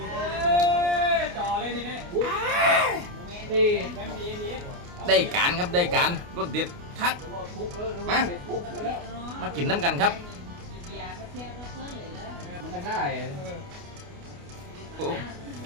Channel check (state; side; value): late; left; 29 ms